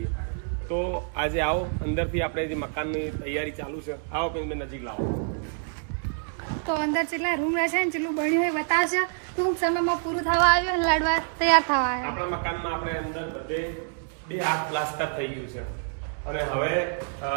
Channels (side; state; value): left; silent; 60 dB below the other